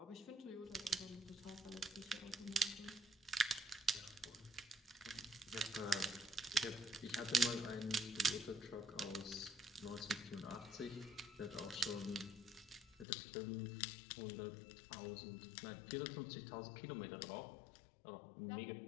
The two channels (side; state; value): right; drops out; at 13.1 s